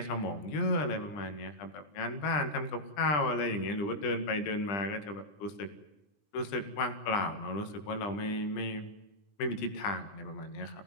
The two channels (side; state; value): right; late; 20 ms